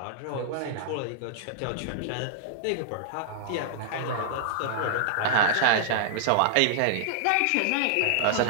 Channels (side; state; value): both; different; correlation -0.01